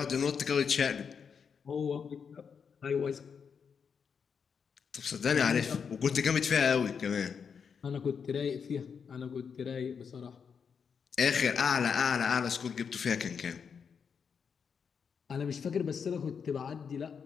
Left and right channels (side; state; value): right; quieter; 6.5 dB